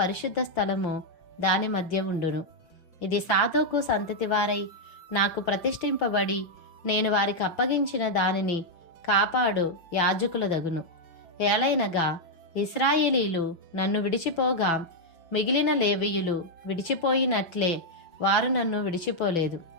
స్థలము దాని మధ్య ఉండును. ఇది సాదోకు సంతతి వారై నాకు ప్రతిష్ఠింపబడి నేను వారికి అప్పగించిన దానిని కాపాడు యాజకుల దగును. ఏలైనగా ఇశ్రాయేలీలు నన్ను విడిచిపోగా మిగిలిన లేవీయులు విడిచిపోయినట్లే వారు నన్ను విడిచిపోలేదు.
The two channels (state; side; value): late; right; 6.0 ms